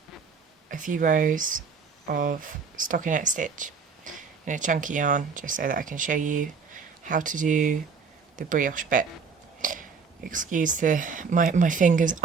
few rows of stockinette stitch in a chunky yarn just so that I can show you how to do the brioche bit. Excuse my fingers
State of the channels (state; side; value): quieter; left; 5.5 dB